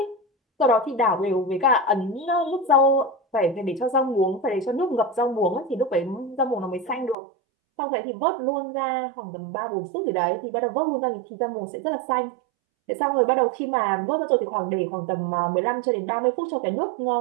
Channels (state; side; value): drops out; left; at 7.2 s